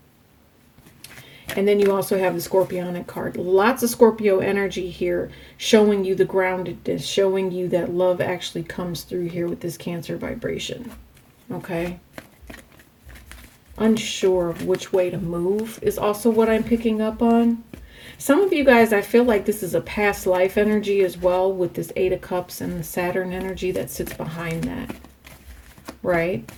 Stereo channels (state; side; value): identical; both; correlation 1.00